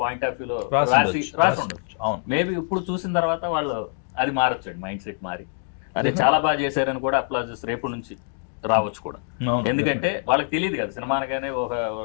పాయింట్ ఆఫ్ వ్యూలో రాసి ఉండొచ్చు. మేబీ ఇప్పుడు చూసిన తర్వాత వాళ్ళు అది మారొచ్చండి, మైండ్ సెట్ మారి అదే చాలా బాగా చేశారని కూడా అప్లాజెస్ రేపు నుంచి రావచ్చు కూడా. ఎందుకంటే వాళ్ళకి తెలియదు కదా సినిమా అనగానే ఒక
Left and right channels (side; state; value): right; silent; 62 dB below the other